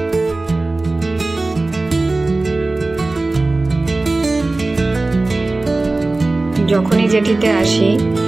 যখনই জেঠিতে আসি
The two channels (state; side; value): quieter; left; 3.1 dB